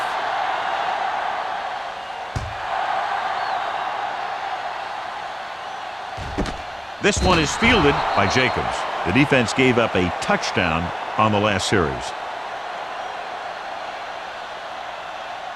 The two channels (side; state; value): both; identical; correlation 1.00